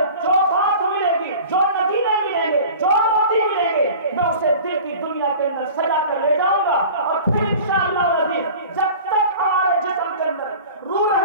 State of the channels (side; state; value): both; inverted; correlation -0.41